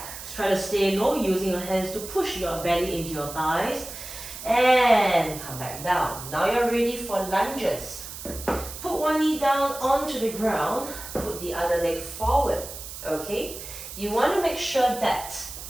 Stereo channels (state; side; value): noise; right; hiss, 11 dB below the sound